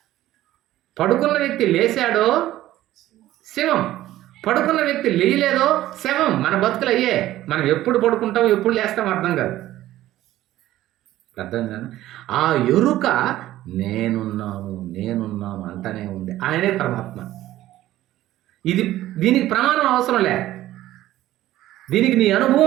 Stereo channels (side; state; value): left; quieter; 14.6 dB